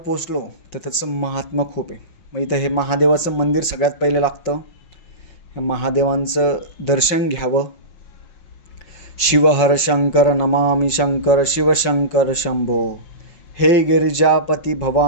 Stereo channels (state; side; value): late; right; 5.7 ms